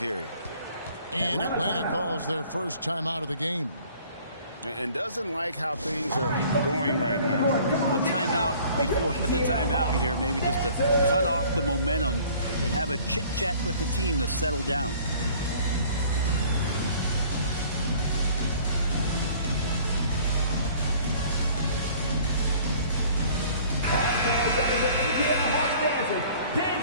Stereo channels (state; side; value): inverted; both; correlation -0.53